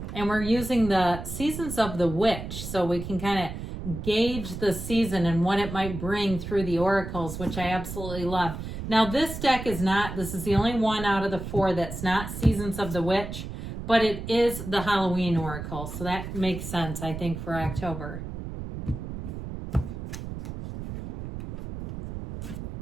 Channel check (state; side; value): noise; right; rumble, 8 dB below the sound